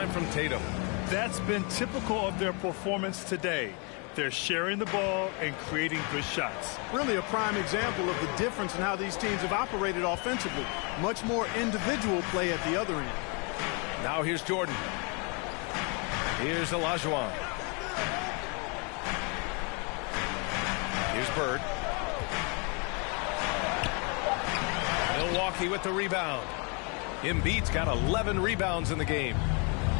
from Tatum. That's been typical of their performance today. They're sharing the ball and creating good shots. Really a prime example of the difference in how these teams have operated offensively. Much more individual play at the other end. Now here's Jordan. Here's Olajuwon. Here's Bird. Milwaukee with the rebound. Embiid's got 11 rebounds in the game.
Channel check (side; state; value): right; quieter; 33.8 dB